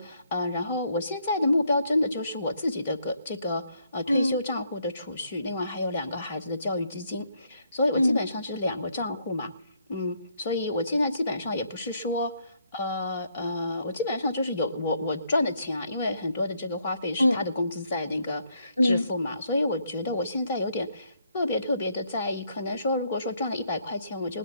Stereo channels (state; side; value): inverted; both; correlation -0.71